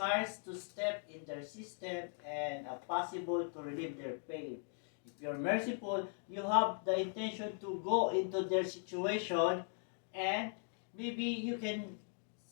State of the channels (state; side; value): silent; right; 52 dB below the other